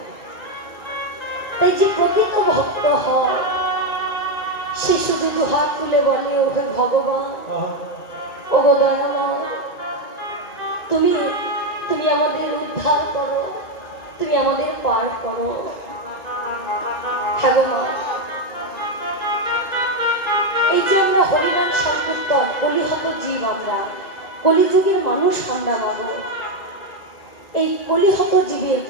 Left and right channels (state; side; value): late; right; 1.8 ms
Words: তাই যে প্রকৃত ভক্ত হয়, সে শুধু দুহাত তুলে বলে, ওহে ভগবান, ওগো দয়াময়, তুমি তুমি আমাদের উদ্ধার করো, তুমি আমাদের পার করো। ভগবান, এই যে আমরা হরিনাম সংকীর্তন, কলিহত জীব, আমরা কলিযুগের মানুষ, আমরা মানব। এই কলিহত জীবের,